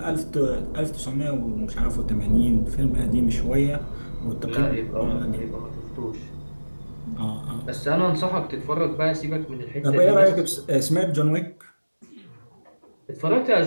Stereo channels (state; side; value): inverted; both; correlation -1.00